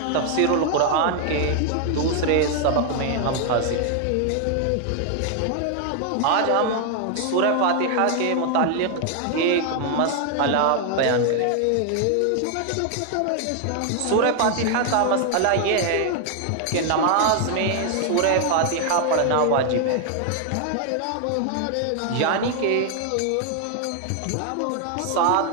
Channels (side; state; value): both; different; correlation 0.00